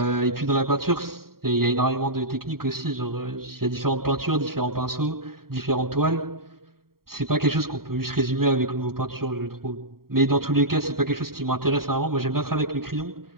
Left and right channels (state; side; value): late; left; 0.93 ms